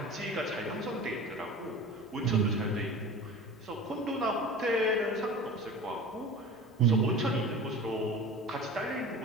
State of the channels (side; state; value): both; normal; correlation 0.36